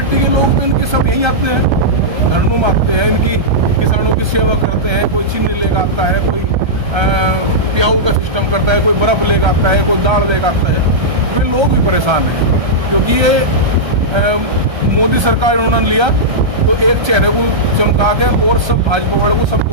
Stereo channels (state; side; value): late; left; 1.3 ms